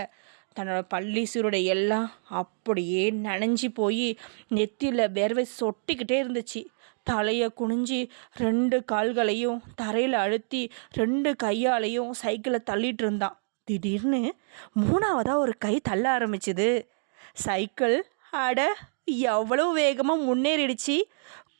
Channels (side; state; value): left; silent; digital silence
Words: தன்னோட பள்ளி சீருடை எல்லாம் அப்படியே நனைஞ்சி போய் நெத்தியில் வேர்வை சொட்டிக்கிட்டே இருந்துச்சு. தலையை குனிஞ்சி 2 கால்களையும் தரையில் அழுத்தி 2 கையாலையும் சைக்கிளை தள்ளிட்டு இருந்தான். திடீர்னு 3ஆவதாக ஒரு கை தள்ள ஆரம்பிச்சுது. சைக்கிள் அட எவ்வளோ வேகமாக முன்னேறிடுச்சு.